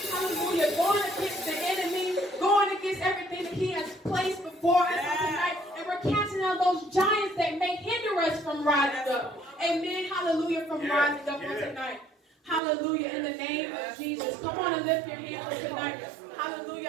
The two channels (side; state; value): left; drops out; at 12.6 s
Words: Hallelujah. Going against the enemy. Going against everything that He has placed before us tonight. And we're casting out those giants that may hinder us from rising up. Amen. Hallelujah. From rising up on tonight. Hallelujah, in the name of Jesus. Come on and lift your hands tonight.